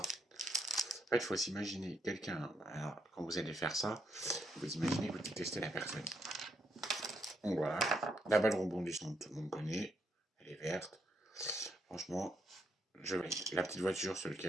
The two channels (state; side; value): normal; both; correlation 0.77